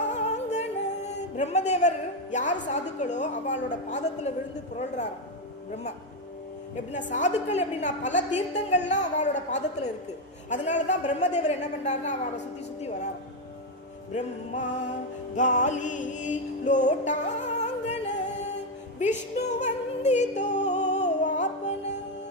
பிரம்மதேவர் யார் சாதுக்களோ அவளோட பாதத்துல விழுந்து புரள்றார் பிரம்மா. எப்படின்னா சாதுக்கள் எப்படின்னா பல தீர்த்தங்கள்லாம் அவளோட பாதத்துல இருக்கு. அதனாலதான் பிரம்மதேவர் என்ன பண்றாருன்னா அவளை சுத்தி சுத்தி வரார். பிரம்மா காலி லோட்டாங்கன விஷ்ணு வந்தித்தோ ஆப்பன.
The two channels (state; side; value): normal; both; correlation 0.06